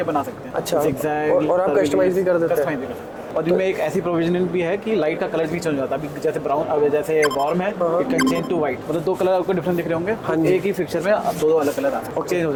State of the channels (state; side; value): identical; both; correlation 1.00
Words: बना सकते हैं। अच्छा, Zigzag, और आप कस्टमाइज भी कर देते हैं? और इनमें एक ऐसी प्रोविजन भी है कि लाइट का कलर भी चेंज हो जाता है। अभी जैसे ब्राउन, अब जैसे वार्म है, it can change to white. मतलब 2 कलर आपको डिफरेंट दिख रहे होंगे। हाँ, एक ही फिक्चर में अब 2 अलग कलर और चेंज हो